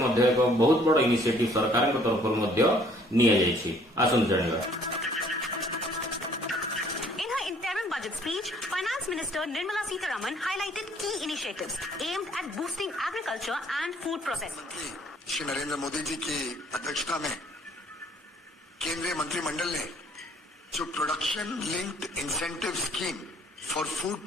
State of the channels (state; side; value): normal; both; correlation 0.60